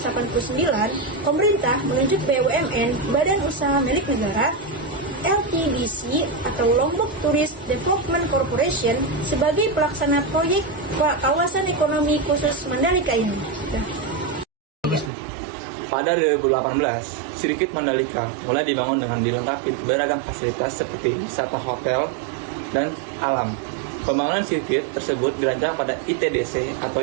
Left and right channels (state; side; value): drops out; left; at 15.1 s